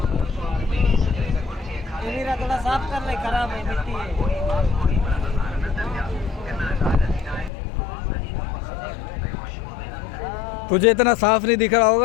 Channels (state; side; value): drops out; right; at 7.5 s